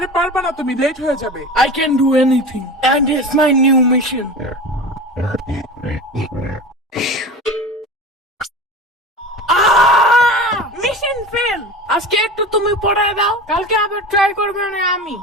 পারবা না, তুমি লেট হয়ে যাবে। I can do anything and it's my new mission. Mission fail. আজকে একটু তুমি পড়ায় দাও, কালকে আবার ট্রাই করবে না আমি।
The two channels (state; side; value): normal; both; correlation 0.31